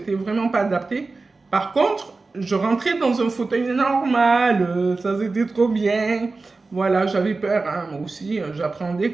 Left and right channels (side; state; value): left; quieter; 3.7 dB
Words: vraiment pas adapté. Par contre, je rentrais dans un fauteuil normal, ça c'était trop bien. Voilà, j'avais peur, hein, moi aussi, j'appréhendais